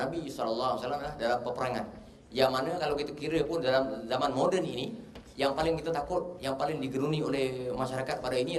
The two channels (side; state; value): both; identical; correlation 1.00